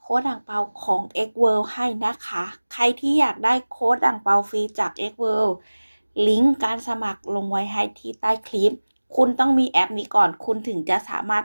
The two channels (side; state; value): both; inverted; correlation -1.00